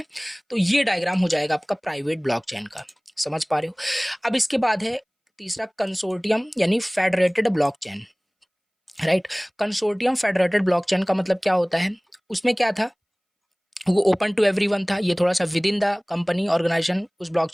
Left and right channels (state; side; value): identical; both; correlation 1.00